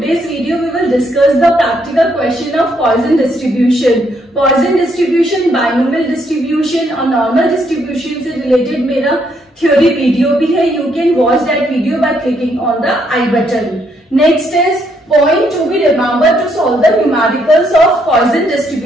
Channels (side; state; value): both; normal; correlation 0.73